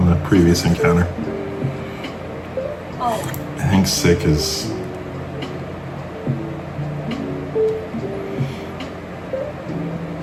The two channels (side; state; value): both; identical; correlation 1.00